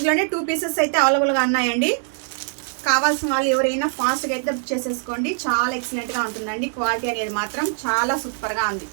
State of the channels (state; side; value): silent; left; 64 dB below the other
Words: 2 పీసెస్ అయితే అవైలబుల్గా ఉన్నాయండి. కావాల్సిన వాళ్ళు ఎవరైనా ఫాస్ట్గా అయితే బుక్ చేసేసుకోండి. చాలా ఎక్సలెంట్గా ఉంటుందండి. క్వాలిటీ అనేది మాత్రం చాలా సూపర్గా ఉంది.